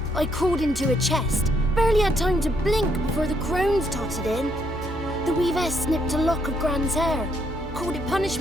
I crawled into a chest. Barely had time to blink before the crones totted in. The weavess snipped a lock of Gran's hair, called it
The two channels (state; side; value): noise; right; hum, 15 dB below the sound